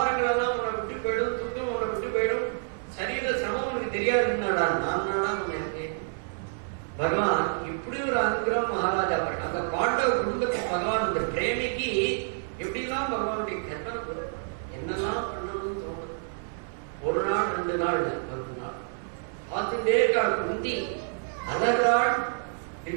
எல்லாம் உன்னை விட்டு போயிடும், துக்கம் உன்னை விட்டு போயிடும், சரீர சிரமம் உனக்கு தெரியாதுன்னாடா நான் இருக்கேன். பகவான் இப்படி ஒரு அனுகிரகம் மகாராஜா பாரு. அந்த பாண்டவ குடும்பத்துக்கு பகவான் இந்த பிரேமிக்கு எப்படிலாம் பகவானுடைய கற்பனை என்னெல்லாம் பண்ணணும்னு தோணுது. ஒரு நாள் 2 நாள் 10 நாள் பார்த்துட்டே இருக்காள். குந்தி அழகாள்,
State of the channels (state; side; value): silent; left; 59 dB below the other